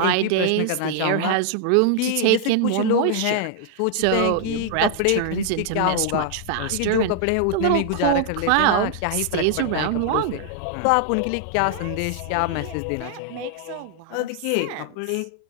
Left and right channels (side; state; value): both; different; correlation 0.00